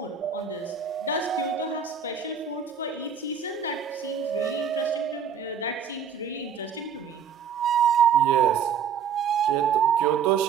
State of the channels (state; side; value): quieter; left; 7.2 dB